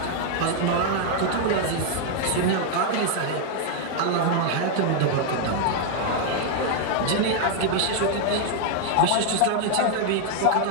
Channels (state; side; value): different; both; correlation 0.00